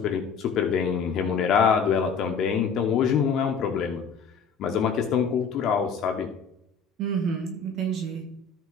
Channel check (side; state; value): right; quieter; 5.4 dB